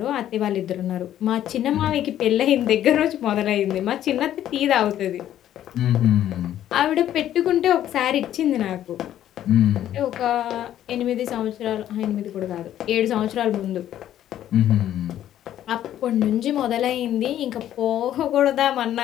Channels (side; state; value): right; quieter; 11.7 dB